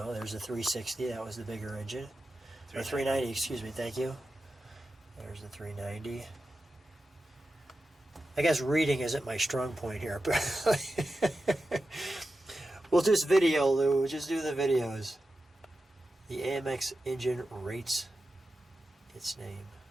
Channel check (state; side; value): normal; both; correlation 0.92